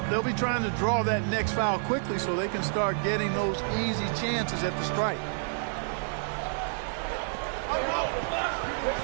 they'll be trying to draw that next foul quickly so they can start getting those easy chances at the strike.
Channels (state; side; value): silent; left; digital silence